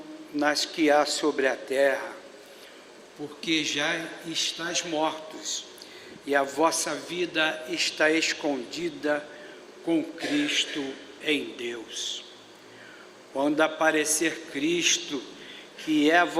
nas que há sobre a terra, porque já estáis mortos, e a vossa vida está escondida com Cristo em Deus. Quando aparecer Cristo, que é a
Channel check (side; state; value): both; identical; correlation 1.00